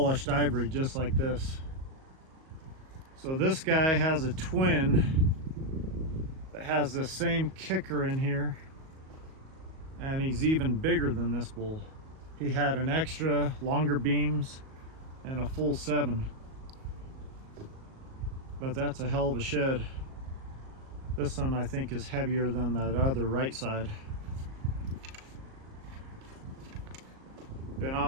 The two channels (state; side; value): late; left; 38 ms